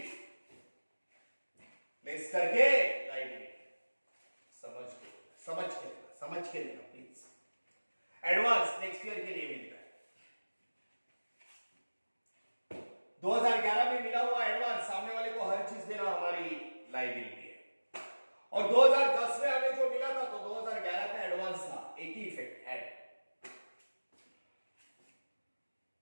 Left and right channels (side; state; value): both; inverted; correlation -1.00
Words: समझ के लेना प्लीज एडवांस नेक्स्ट ईयर के लिए मिलता है 2011 में मिला हुआ एडवांस सामने वाले को हर चीज देना हमारी लायबिलिटी है और 2010 में हमें जो मिला था तो 2011 का एडवांस था एक ही इफेक्ट ऐड